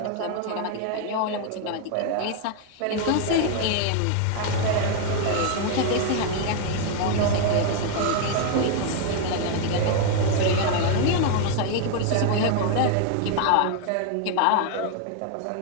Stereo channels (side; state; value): both; different; correlation 0.00